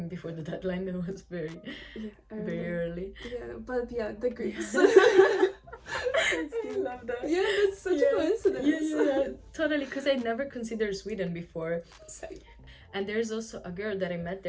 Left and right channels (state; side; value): identical; both; correlation 1.00